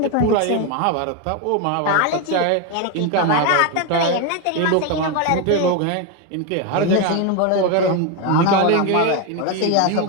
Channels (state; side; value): different; both; correlation 0.02